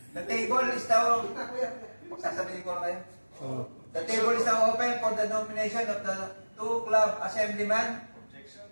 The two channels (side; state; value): both; inverted; correlation -1.00